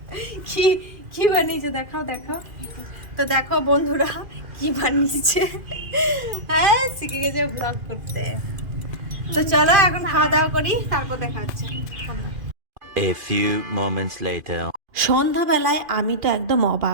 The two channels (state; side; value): late; left; 2.5 ms